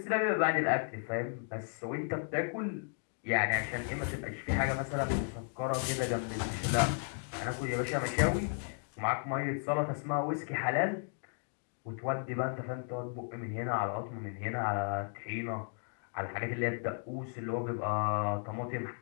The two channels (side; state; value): right; silent; 55 dB below the other